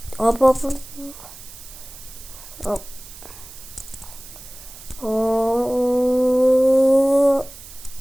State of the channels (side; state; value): right; noise; hiss, 17 dB below the sound